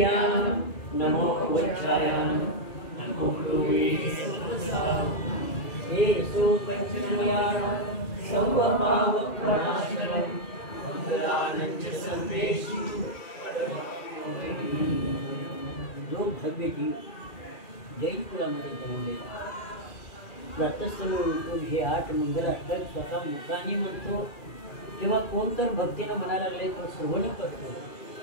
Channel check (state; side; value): late; right; 2.4 ms